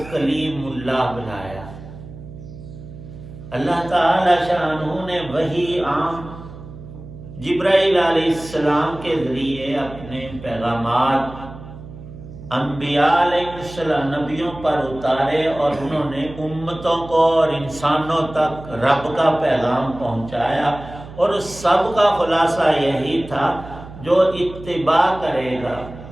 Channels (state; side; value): noise; right; hum, 15 dB below the sound